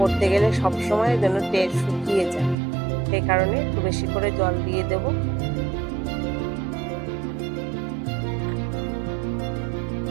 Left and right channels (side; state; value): left; drops out; at 2.6 s